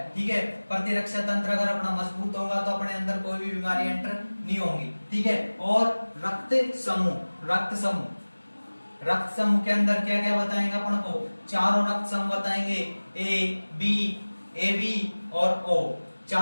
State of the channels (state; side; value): inverted; both; correlation -1.00